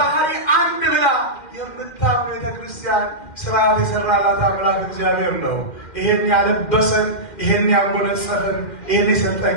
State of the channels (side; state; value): right; late; 2.1 ms